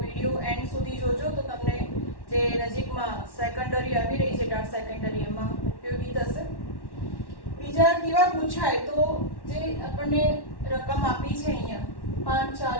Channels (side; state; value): right; late; 1.1 ms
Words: એન્ડ સુધી જોજો તો તમને જે નજીકમાં સેકન્ડરી આવી રહી છે ટાટ સેકન્ડરી એમાં ઉપયોગી થશે. બીજા કેવા પૂછાય તો જે આપણને રકમ આપી છે અહીંયા